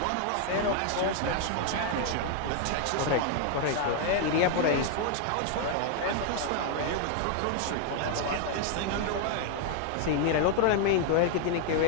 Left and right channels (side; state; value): both; different; correlation 0.00